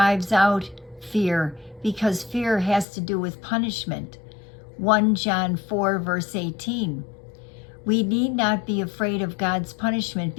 out fear, because fear has to do with punishment. 1 John 4, verse 18. We need not be afraid of God's punishment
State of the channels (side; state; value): right; drops out; at 2.9 s